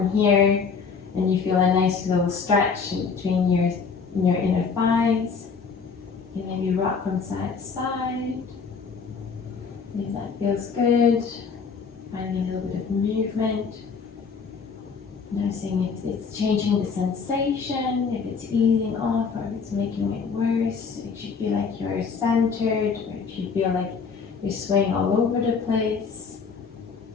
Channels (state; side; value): quieter; right; 5.5 dB